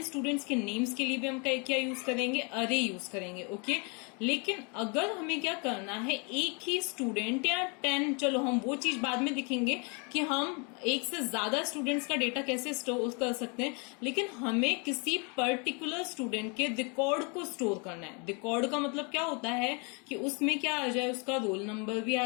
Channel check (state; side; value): quieter; right; 33.6 dB